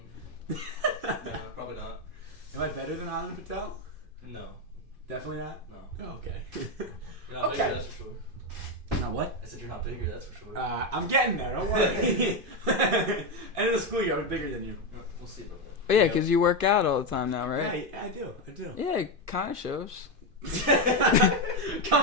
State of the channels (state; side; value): late; left; 2.5 ms